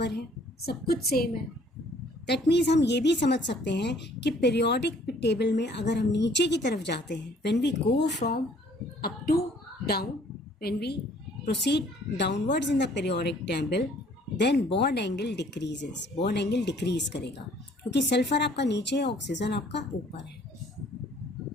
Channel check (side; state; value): both; normal; correlation 0.58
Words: है, सब कुछ सेम है। दैट मीन्स हम ये भी समझ सकते हैं कि पीरियोडिक टेबल में अगर हम नीचे की तरफ जाते हैं, when we go from up to down, when we proceed downwards in the periodic table, then bond angle decreases, bond angle decrease करेगा, क्योंकि सल्फर आपका नीचे है, ऑक्सीजन आपका ऊपर है,